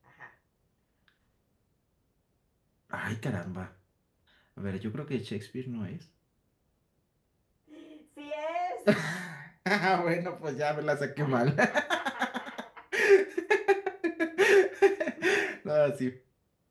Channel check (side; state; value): both; identical; correlation 1.00